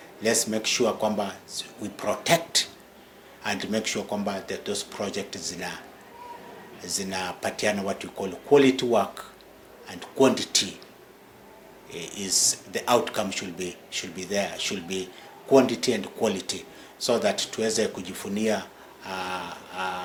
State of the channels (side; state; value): both; identical; correlation 1.00